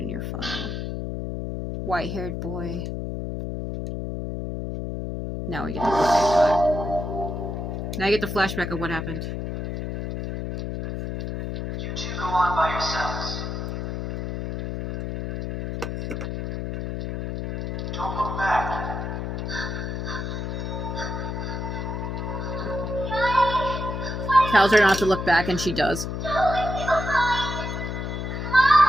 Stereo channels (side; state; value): left; noise; hum, 4 dB below the sound